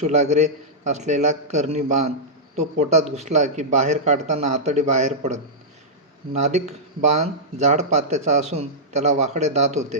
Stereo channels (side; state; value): both; normal; correlation -0.11